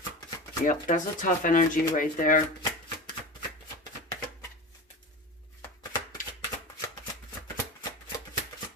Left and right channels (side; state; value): both; normal; correlation 0.28